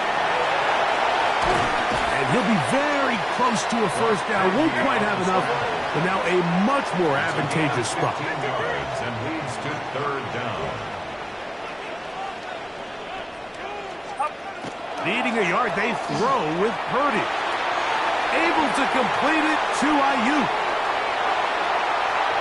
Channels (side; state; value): both; identical; correlation 1.00